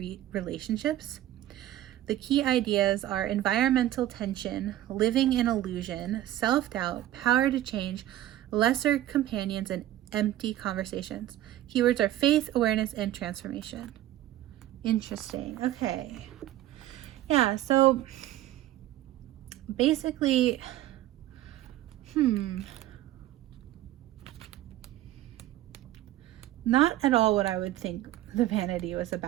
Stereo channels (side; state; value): left; quieter; 13.7 dB